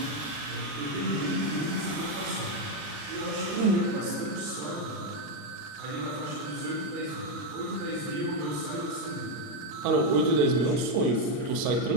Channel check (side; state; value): left; late; 40 ms